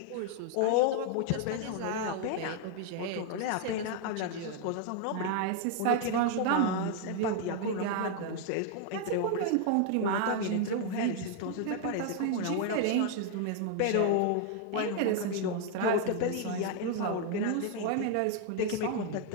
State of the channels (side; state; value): both; different; correlation 0.00